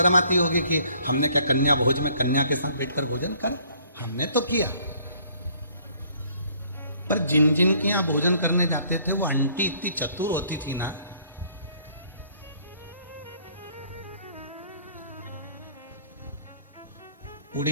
आती होगी कि हमने क्या कन्या भोज में कन्या के साथ बैठकर भोजन कर, हमने तो किया। पर जिन जिन के यहाँ भोजन करने जाते थे वो आंटी इतनी चतुर होती थी ना,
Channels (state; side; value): inverted; both; correlation -0.60